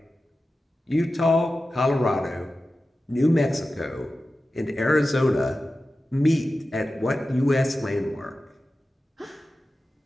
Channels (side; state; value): both; normal; correlation 0.94